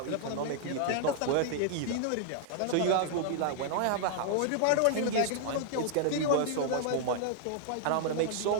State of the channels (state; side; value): different; both; correlation -0.01